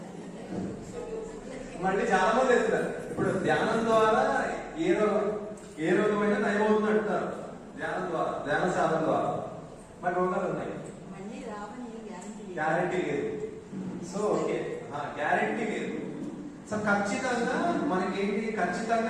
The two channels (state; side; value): identical; both; correlation 1.00